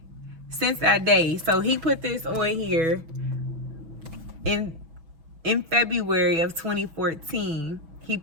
since that day, so he put this on here in February of 2014. He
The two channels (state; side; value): late; left; 6.2 ms